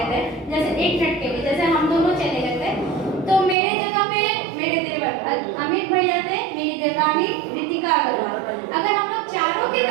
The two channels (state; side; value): drops out; left; at 3.6 s